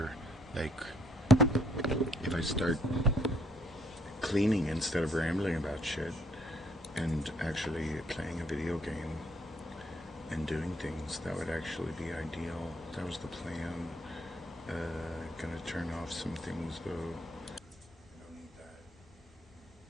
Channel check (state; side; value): normal; both; correlation 0.67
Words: Like, if I start cleaning instead of rambling about shit and actually playing a video game and doing things, that would actually be ideal. That was the plan. Gonna turn off some things though. I don't need